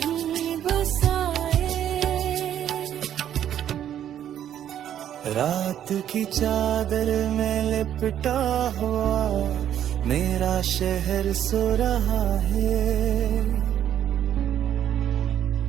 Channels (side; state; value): left; quieter; 10.4 dB